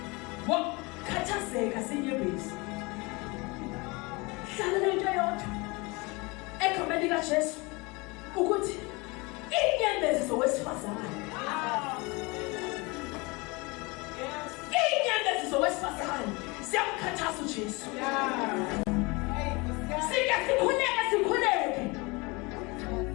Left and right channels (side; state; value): right; quieter; 26.2 dB